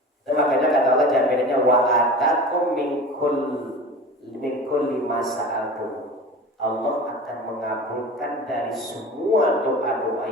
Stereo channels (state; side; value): normal; both; correlation 0.35